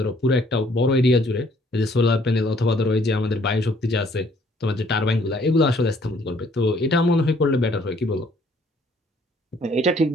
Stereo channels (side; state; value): both; normal; correlation 0.63